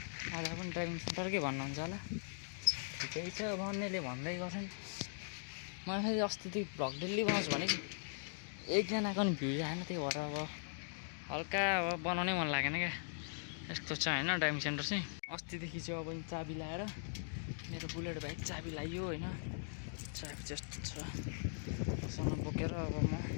अब पनि ड्राइभिङ सेन्टरकै भन्नुहुन्छ होला ठिकै छ भन्नेले भन्दै गर्छन् मलाई फेरि अस्तिदेखि भ्लग डेली बनाउँछु भने एकजनाको पनि भ्युज आएन त्यही भएर अब हल्का अब बनाउनै मन लागेन क्या यस्तो छ होइन ड्राइभिङ सेन्टर चाहिँ अस्तिदेखि चाहिँ अब चाबी लाएर मेरो बुलेट बाइक चाबी लाइयो होइन चाबी जस्तो छ सँग बोकेर अब म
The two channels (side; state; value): right; silent; digital silence